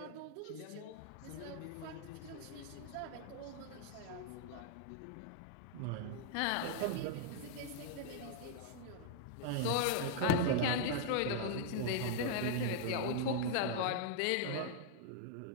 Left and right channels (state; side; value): different; both; correlation -0.01